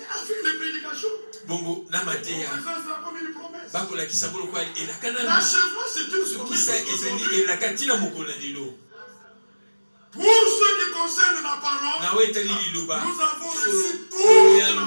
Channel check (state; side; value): inverted; both; correlation -1.00